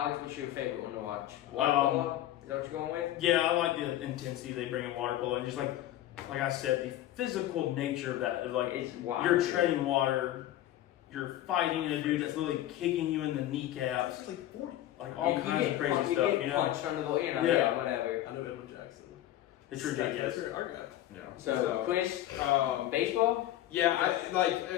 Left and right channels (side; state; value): right; quieter; 13.5 dB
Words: what's your favorite one to watch? Water polo? Is that what you're going with? Yeah, I like the intensity they bring in water polo, and just like I said, the physical nature of that. Of like It's wild. you're treading water, you're fighting a dude that's literally kicking you in the kneecaps, It's like 40. like all You kinds get of crazy punched- stuff. get You know, punched under the, Yeah. whatever. I know Edwin Jackson. it's ridiculous. That's our guy. Yeah. So, Chris, baseball? Yeah, I